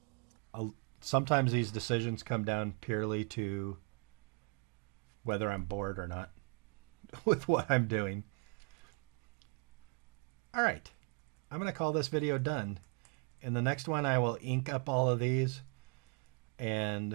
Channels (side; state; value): left; quieter; 37.5 dB